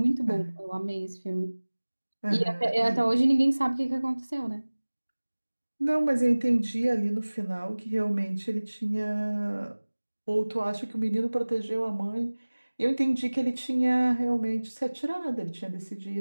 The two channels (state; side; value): inverted; both; correlation -1.00